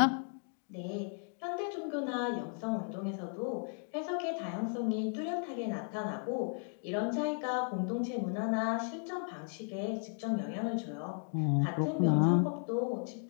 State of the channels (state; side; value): silent; right; 54 dB below the other